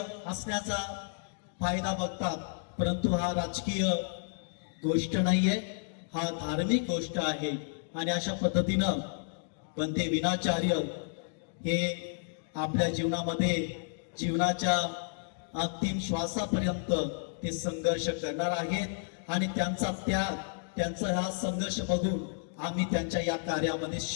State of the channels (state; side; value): silent; right; digital silence